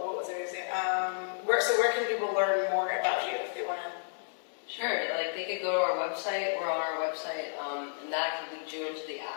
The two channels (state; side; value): silent; right; digital silence